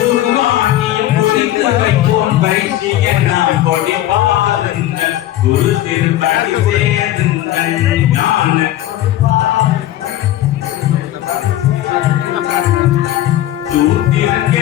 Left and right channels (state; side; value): quieter; right; 13.7 dB